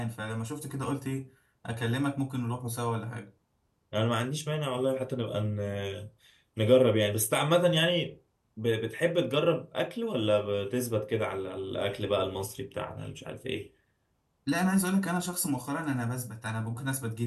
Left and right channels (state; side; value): identical; both; correlation 1.00